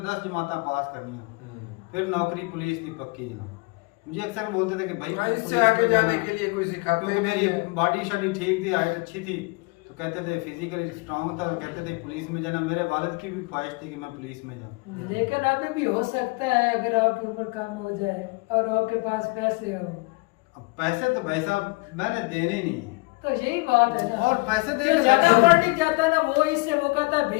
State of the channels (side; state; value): right; quieter; 27.7 dB